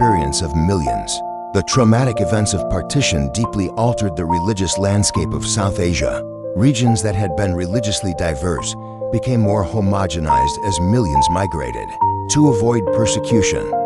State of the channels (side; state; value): both; identical; correlation 1.00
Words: of millions. The traumatic events of partition deeply altered the religious landscape of South Asia. Regions that had been religiously diverse became more homogenized as millions migrated. To avoid persecution,